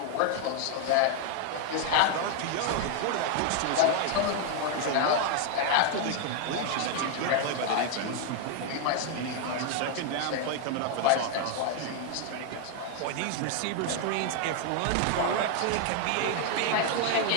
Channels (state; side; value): different; both; correlation 0.00